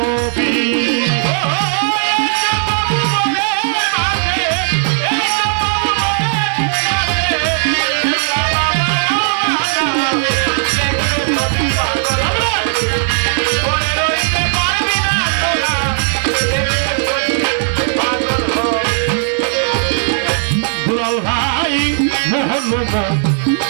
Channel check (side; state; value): left; silent; digital silence